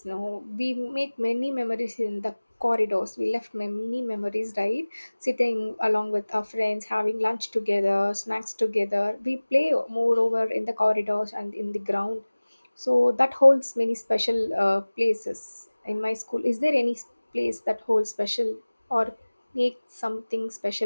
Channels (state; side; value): inverted; both; correlation -1.00